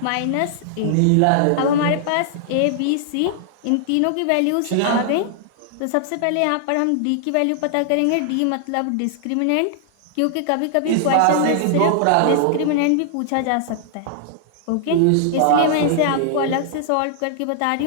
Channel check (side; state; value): both; different; correlation -0.01